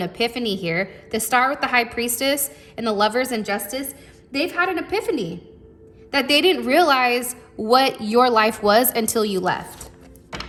epiphany here. The Star with the High Priestess and the Lovers and Justice, they've had an epiphany that they didn't realize what your life was until you left.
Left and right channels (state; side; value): identical; both; correlation 1.00